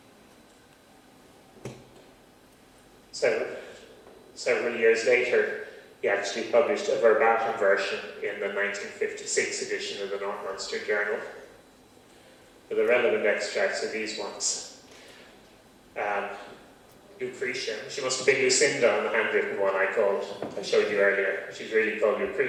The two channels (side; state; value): both; identical; correlation 1.00